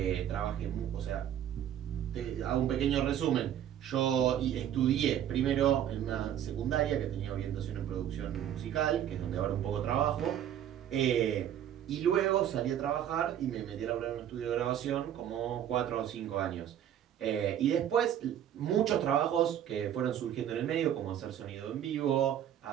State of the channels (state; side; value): quieter; left; 10.4 dB